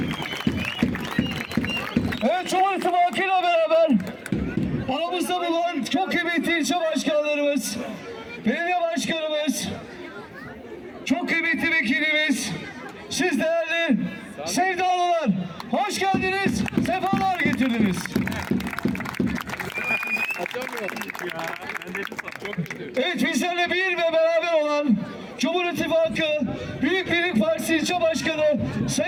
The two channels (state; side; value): identical; both; correlation 1.00